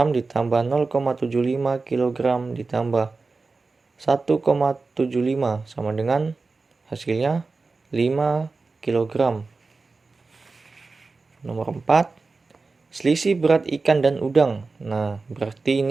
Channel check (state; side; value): quieter; left; 3.9 dB